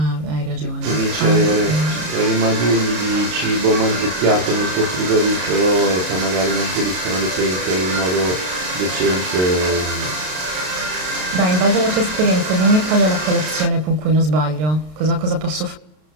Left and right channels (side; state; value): left; late; 33 ms